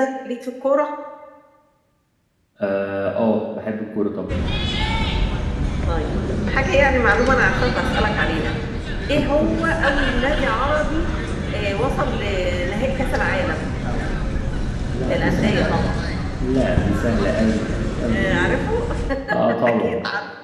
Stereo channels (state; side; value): identical; both; correlation 1.00